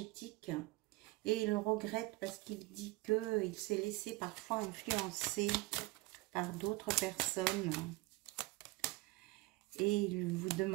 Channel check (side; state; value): left; quieter; 21.8 dB